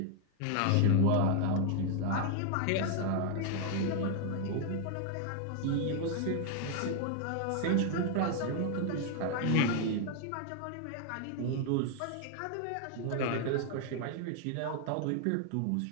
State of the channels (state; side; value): different; both; correlation 0.00